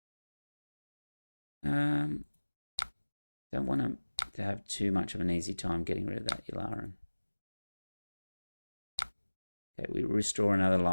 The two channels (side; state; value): both; inverted; correlation -1.00